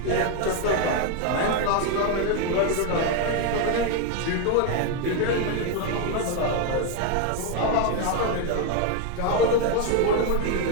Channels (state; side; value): different; both; correlation 0.01